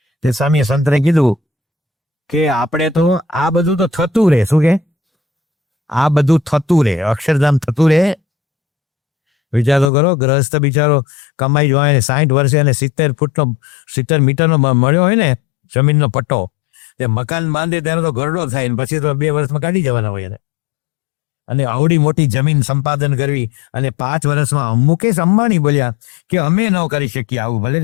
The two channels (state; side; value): drops out; right; at 9.9 s